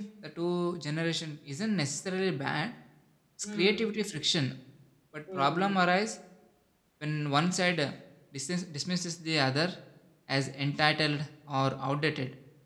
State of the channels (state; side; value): identical; both; correlation 1.00